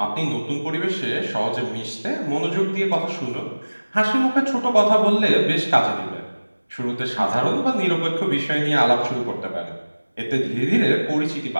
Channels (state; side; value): inverted; both; correlation -1.00